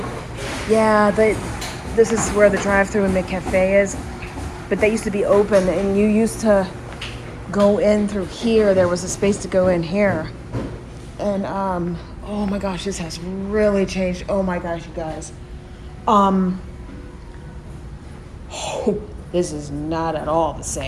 Yeah, this is where the drive-thru and the cafe is. But they used to be open, and you used to go in through here. There was a space to go in here. And, oh my gosh, this has really changed. Oh my gosh, you guys. Oh, this is not at all the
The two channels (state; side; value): identical; both; correlation 1.00